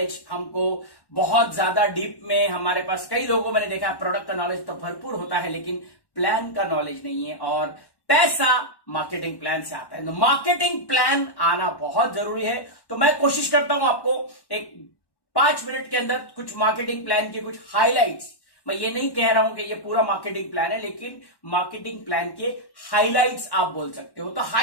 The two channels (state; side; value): late; right; 1.1 ms